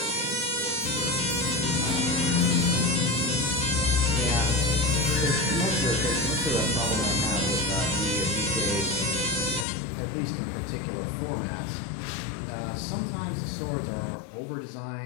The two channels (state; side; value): drops out; right; at 9.7 s